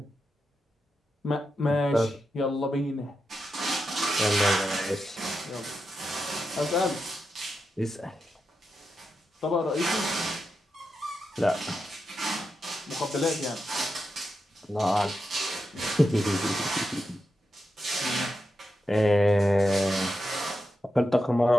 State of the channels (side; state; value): both; normal; correlation 0.87